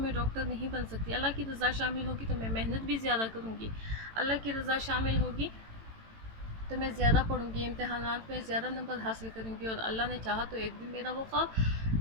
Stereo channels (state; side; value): late; left; 18 ms